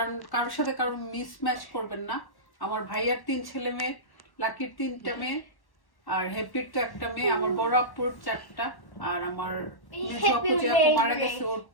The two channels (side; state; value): right; late; 1.1 ms